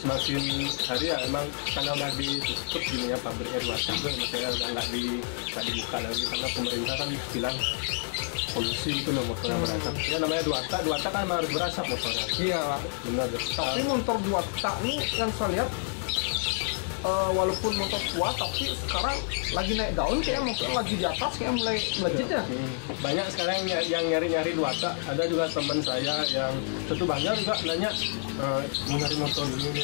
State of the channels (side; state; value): right; silent; 59 dB below the other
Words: hari ya emang karena udah ditutup gini ya pabriknya dua tak itu maksudnya udah nggak dibuka lagi karena pemerintah kan bilang polusi itu loh motornya berasap. Ya namanya dua tak kan harus berasap motornya. Iya lah. Benar. Tapi motor dua tak nih yang saya lihat walaupun motor tua tapi sekarang lagi naik daun, kayak motor lagi di atas kayak mulai melejit ya. Banyak sekarang yang nyari dua tak. Ada juga teman saya yang tentu banyak juga nanya mau nyari motor ini.